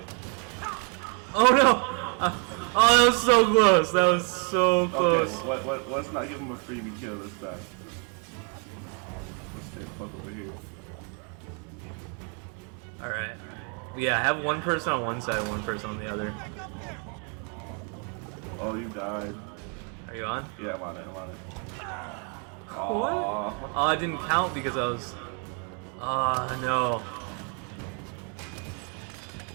Oh no! Oh, that was so close. That was so close. Okay, let's not give him a freebie kill this time. Let's stay fuck over here. Alright. Yeah, I have one person on one side, one person on the other. Oh, you died. Are you on? Yeah, I'm on it. What? Oh, it didn't count because I was... Oh, no.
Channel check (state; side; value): quieter; left; 37.4 dB